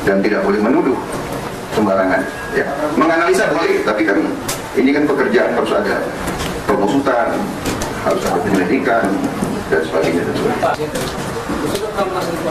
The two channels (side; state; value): both; identical; correlation 1.00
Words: dan tidak boleh menuduh sembarangan. Ya, menganalisa boleh, tapi kan ini kan pekerjaan, harus ada pengusutan, harus ada penyelidikan dan sebagainya.